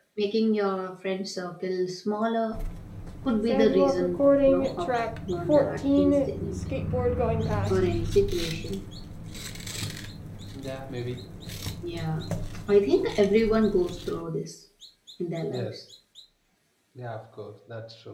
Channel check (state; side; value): identical; both; correlation 1.00